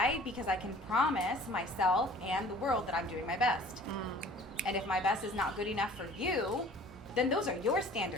can promise myself and the world that I'm doing my best. And if my best is not good enough for you, then those are your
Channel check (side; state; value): both; normal; correlation 0.48